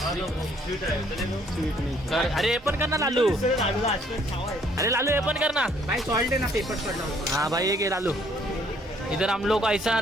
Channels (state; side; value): normal; both; correlation 0.64